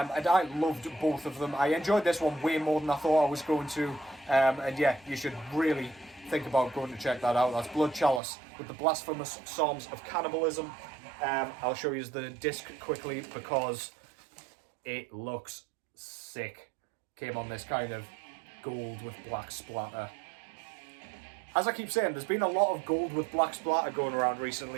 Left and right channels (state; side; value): drops out; left; at 8.2 s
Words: I loved both of them. I enjoyed this one way more than I thought I was going to, and yeah, you should really think about going to check that out. That's Blood Chalice with the Blasphemous Psalms of Cannibalism. I'll show you the disc quickly because it looks sick. Came on this kind of gold with black splatter. As I keep saying, there's been a lot of gold with black splatter going around